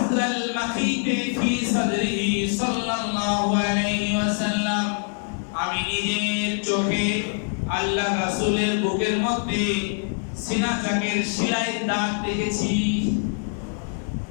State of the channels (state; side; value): silent; right; 57 dB below the other